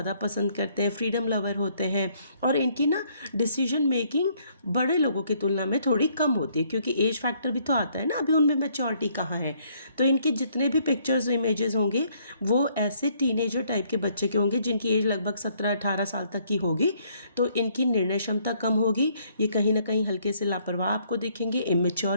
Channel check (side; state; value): both; inverted; correlation -0.67